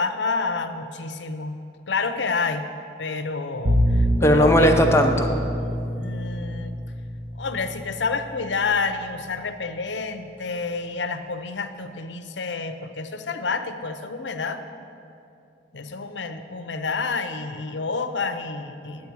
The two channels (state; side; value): normal; both; correlation 0.38